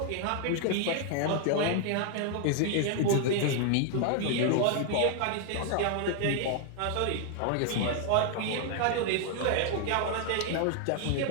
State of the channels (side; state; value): both; different; correlation 0.00